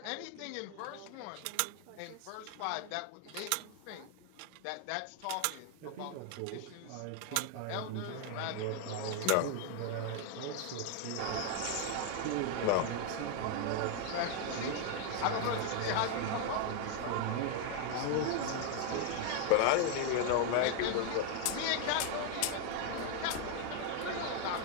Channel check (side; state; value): both; different; correlation 0.01